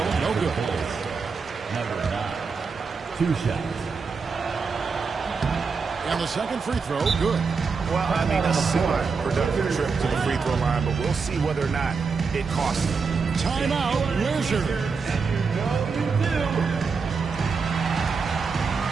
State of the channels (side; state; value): left; quieter; 5.1 dB